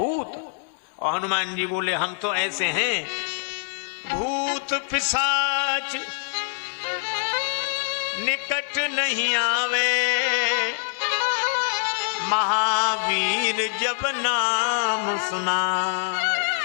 और हनुमान जी बोले हम तो ऐसे हैं, भूत पिशाच निकट नहीं आवे, महावीर जब नाम सुना।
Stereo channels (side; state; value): right; silent; digital silence